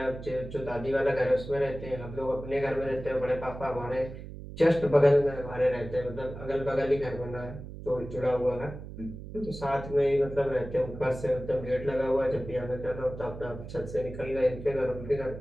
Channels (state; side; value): noise; right; hum, 11 dB below the sound